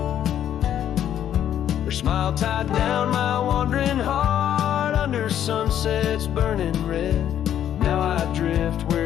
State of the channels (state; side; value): quieter; right; 10.5 dB